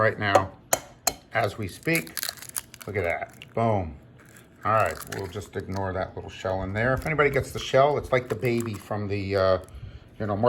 now as we speak. Look at that, boom. All right, we'll just ignore that little shell in there. If anybody gets the shell, it's like the baby from the,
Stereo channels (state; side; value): identical; both; correlation 1.00